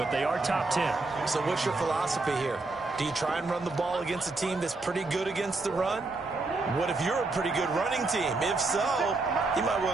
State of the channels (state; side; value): quieter; left; 3.4 dB